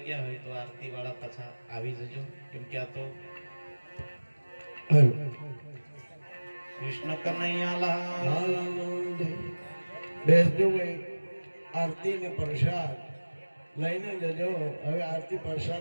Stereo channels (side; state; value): both; inverted; correlation -1.00